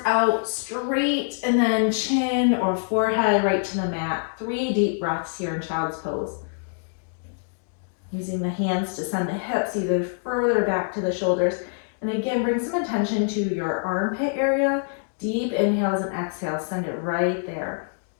out straight, and then chin or forehead right to the mat. 3 deep breaths here in child's pose. Using the hands to send the hips either further back to the shoulders. And again, bring some attention to your armpit area. Deep inhales and exhales, send it right there.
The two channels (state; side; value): silent; right; digital silence